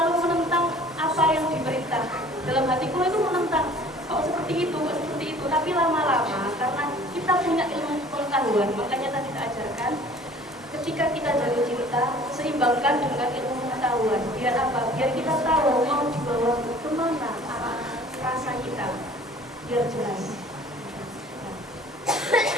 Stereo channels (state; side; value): normal; both; correlation 0.50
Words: menentang apa yang diperintah. Dalam hati Kulo itu menentang, kok seperti itu, tapi lama-lama karena kita punya ilmu pengetahuan, makanya tadi kita ajarkan ketika kita jatuh cinta, seimbangkan dengan ilmu pengetahuan. Biar apa? Biar kita tahu mau dibawa kemana arah rasa kita, biar jelas. Nah,